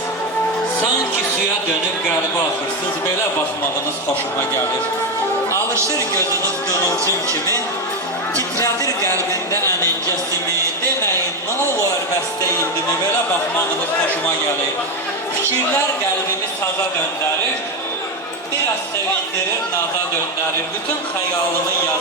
Sanki suya dönüb qəlbə axırsınız. Belə baxmağınız xoşuma gəlir. Alışır gözünüz qığılcım kimi. Titrədir qəlbində ənincəsimi. Deməyin, nə olur bəstə indimi? Belə baxmağınız xoşuma gəlir. Fikirlər qəlbimi saza döndərir. Biraz sevindirir, naza döndərir. Bütün xəyalımı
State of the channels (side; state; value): both; normal; correlation 0.10